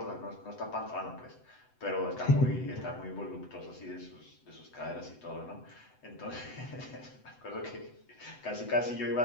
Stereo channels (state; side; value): late; right; 7.9 ms